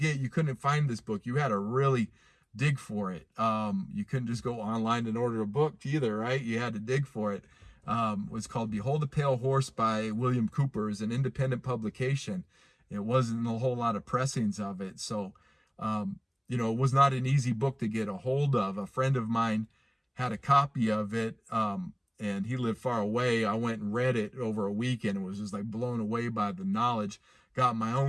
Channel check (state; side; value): identical; both; correlation 1.00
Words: You couldn't find this book. You had to really dig for it. You couldn't just go online and order a book either, right? You had to dig for it. It was called Behold the Pale Horse by William Cooper. It's an independent publication. It wasn't a whole lot of pressings of it. So, it was not an easy book to get a hold of. A friend of mine had a copy of it, and he lived far away. I went and read it over a weekend and was just like blown away by the knowledge. Got my